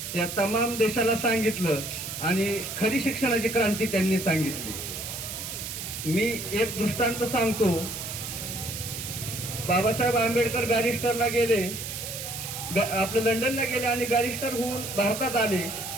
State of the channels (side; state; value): right; noise; hiss, 7 dB below the sound